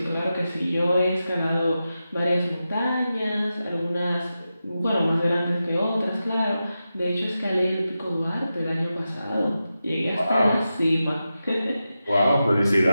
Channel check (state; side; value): inverted; both; correlation -0.91